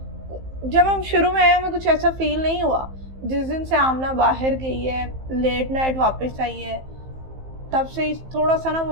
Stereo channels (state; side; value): late; left; 15 ms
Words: जब हम शुरू में आए हमें कुछ ऐसा फील नहीं हुआ। जिस दिन से आमना बाहर गई है, लेट नाइट वापस आई है, तब से ही थोड़ा सा ना